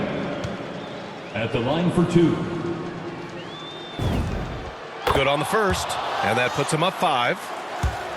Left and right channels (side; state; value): both; identical; correlation 1.00